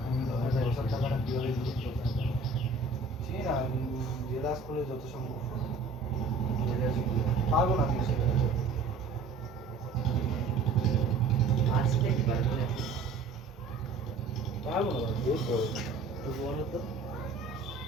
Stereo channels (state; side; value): quieter; left; 3.8 dB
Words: আমি 10,000 টাকাটা কীভাবে দিচ্ছি চিনি না, জেলাস করে যত সম্ভব পারবো না আমি সেটা। আজকে কি পারবে? পারবো না ভাই, বহুত বড়। তো বলো তো।